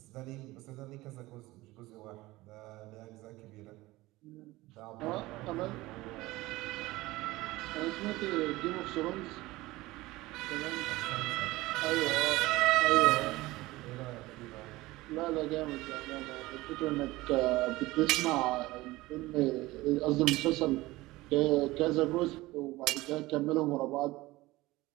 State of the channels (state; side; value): quieter; left; 19.3 dB